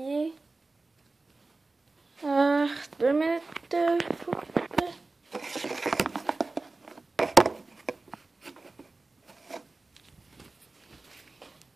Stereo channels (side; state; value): left; quieter; 3.4 dB